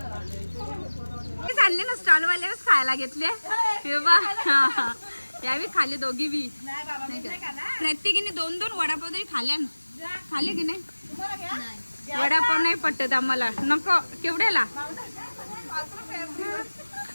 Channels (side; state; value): both; inverted; correlation -1.00